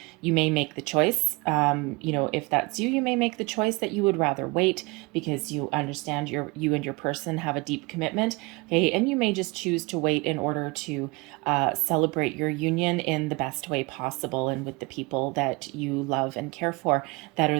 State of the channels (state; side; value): quieter; left; 26.3 dB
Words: you may make the choice, if that's you may make the choice that you would rather wait because you understand you and your person have a deep commitment, okay, and you may just choose to wait in order to celebrate your union in the best way possible and connection with the people that you love and care for that